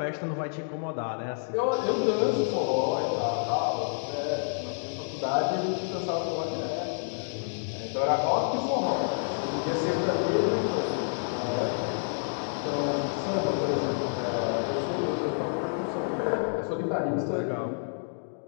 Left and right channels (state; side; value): silent; right; digital silence